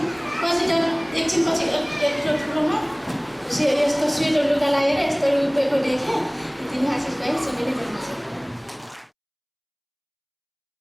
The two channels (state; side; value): identical; both; correlation 1.00